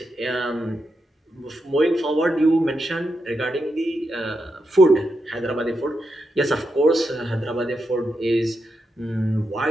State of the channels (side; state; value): both; normal; correlation 0.85